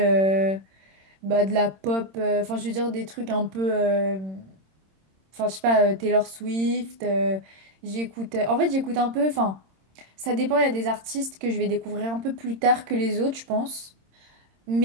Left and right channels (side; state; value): left; late; 26 ms